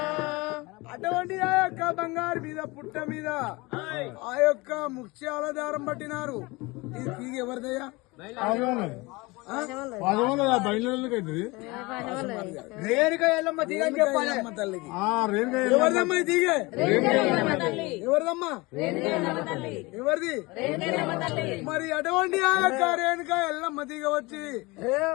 అటువంటి ఆ యొక్క బంగారు మీద పుట్ట మీద ఆ యొక్క ముత్యాల దారం పట్టినారు. ఇది తీగ ఎవరిదయ్యా? రేణుక ఎల్లమ్మ తీగ అని చెప్పాలి తల్లికి. ఎవరిదమ్మా ఈ తీగ? ఎవరిదమ్మా? ఎవరిది? మరి అటువంటి ఆ యొక్క రేణుక ఎల్లమ్మ తీగ వచ్చి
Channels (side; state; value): right; quieter; 23.8 dB